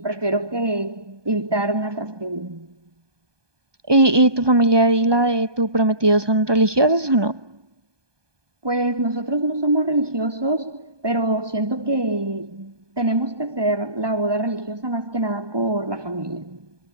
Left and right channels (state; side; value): late; left; 1.2 ms